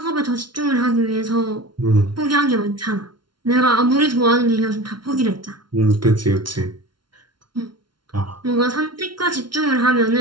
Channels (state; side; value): late; left; 0.72 ms